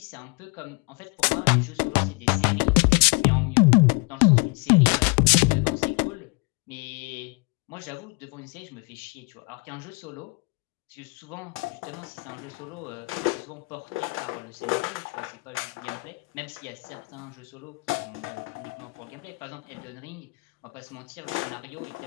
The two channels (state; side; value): quieter; right; 29.3 dB